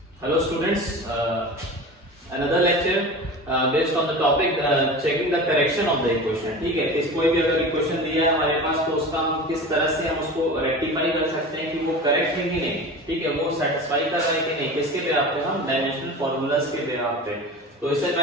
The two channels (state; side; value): normal; both; correlation 0.33